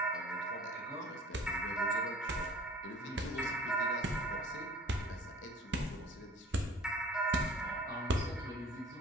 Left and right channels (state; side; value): normal; both; correlation 0.48